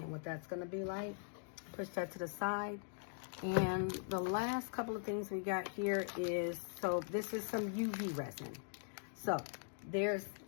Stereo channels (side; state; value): right; silent; digital silence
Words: what that's going to be like. Push that to the side. And the last couple of things we got here is, so this is some UV resin. So